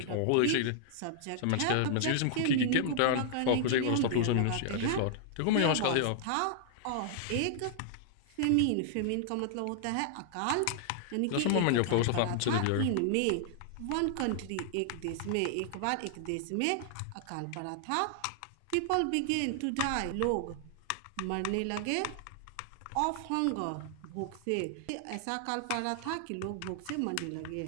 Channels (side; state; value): both; different; correlation -0.01